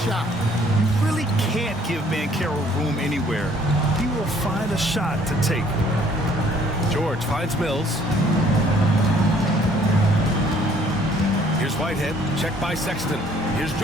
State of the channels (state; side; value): normal; both; correlation 0.60